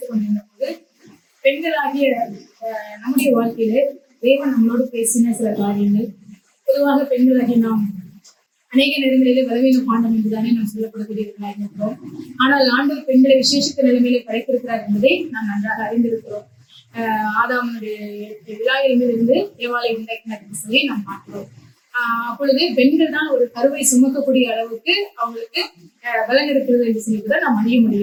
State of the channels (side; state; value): both; identical; correlation 1.00